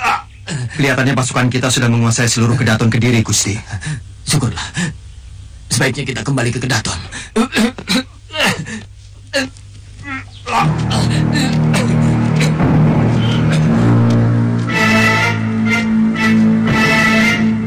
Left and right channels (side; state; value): both; identical; correlation 1.00